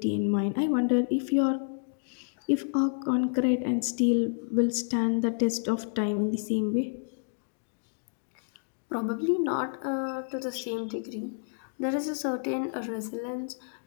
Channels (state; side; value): silent; right; digital silence